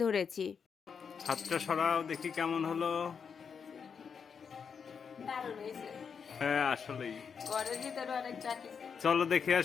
ধরেছি। হাতটা সরাও দেখি কেমন হলো। দারুণ হয়েছে। হ্যাঁ আসলেই। ঘরের ভিতরে অনেক চাকি। চলো দেখে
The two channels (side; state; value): right; quieter; 6.4 dB